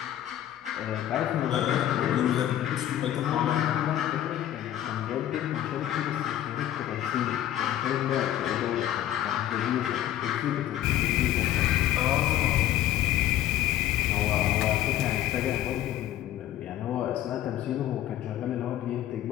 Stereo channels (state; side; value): quieter; right; 12.4 dB